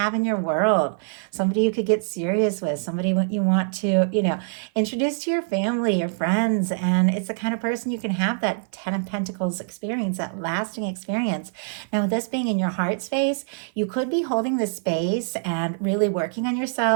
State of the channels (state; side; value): silent; left; 55 dB below the other